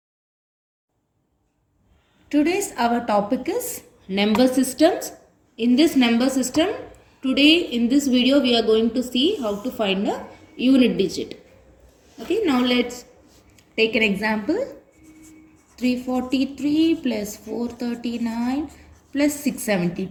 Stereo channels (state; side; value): identical; both; correlation 1.00